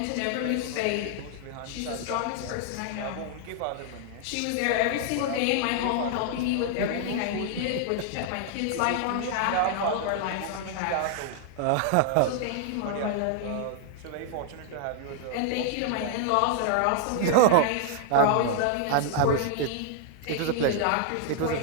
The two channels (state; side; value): different; both; correlation 0.00